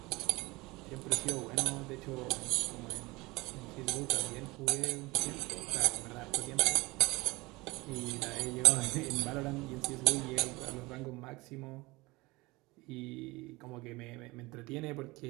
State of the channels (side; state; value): left; quieter; 22.5 dB